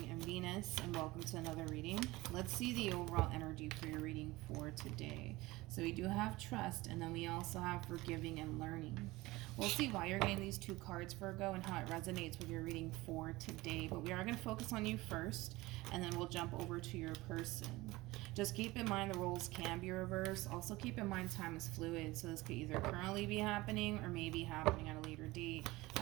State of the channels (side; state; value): left; quieter; 20.2 dB